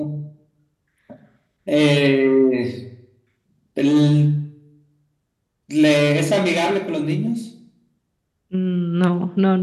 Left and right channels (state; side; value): identical; both; correlation 1.00